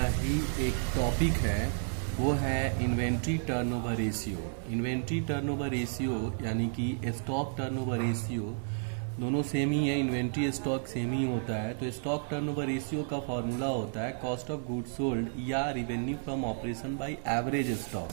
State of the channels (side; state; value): left; silent; digital silence